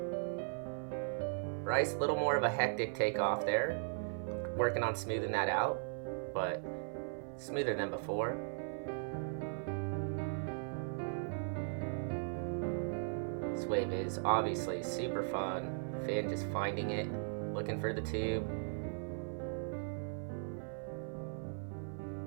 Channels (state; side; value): silent; left; 52 dB below the other